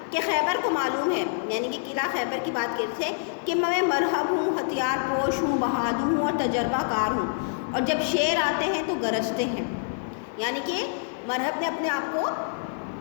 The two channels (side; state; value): right; silent; digital silence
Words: کہ خیبر کو معلوم ہے, یعنی کہ قلعہ خیبر کی بات کرتے تھے, کہ میں مرہب ہوں, ہتھیار پوش ہوں, بہادر ہوں اور تجربہ کار ہوں, اور جب شیر آتے ہیں تو گرجتے ہیں. یعنی کہ مرہب نے اپنے آپ کو